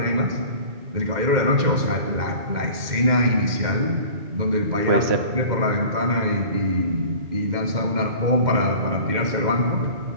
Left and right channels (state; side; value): late; left; 2.1 ms